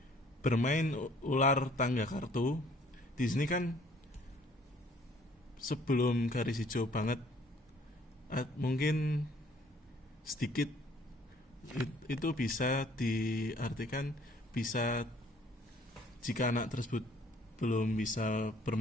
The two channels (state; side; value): normal; both; correlation 0.58